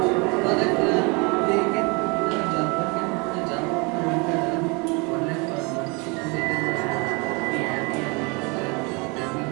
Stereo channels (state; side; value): quieter; left; 29.7 dB